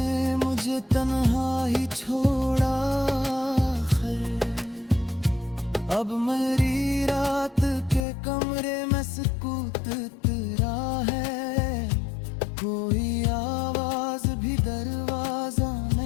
मुझे तन्हा ही छोड़ा है। अब मेरी रात के कमरे में सुकूत तेरा है, कोई आवाज भी दरवाजा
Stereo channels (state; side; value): drops out; right; at 8.1 s